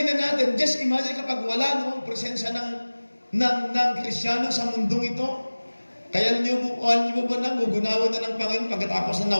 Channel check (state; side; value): inverted; both; correlation -1.00